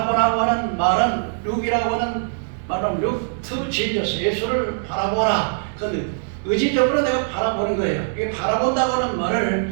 하는 말은 look이라고 하는 말은 look to Jesus. 예수를 바라보라. 그 의지적으로 내가 바라보는 거예요. 이 바라본다고 하는 말을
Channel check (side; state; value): left; silent; digital silence